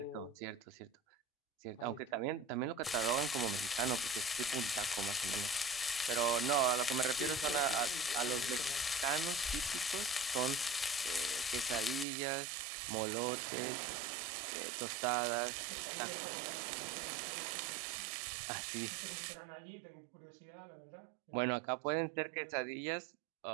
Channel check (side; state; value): left; drops out; at 12.1 s